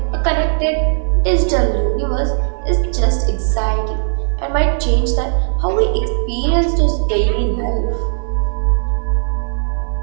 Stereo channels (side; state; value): left; silent; 59 dB below the other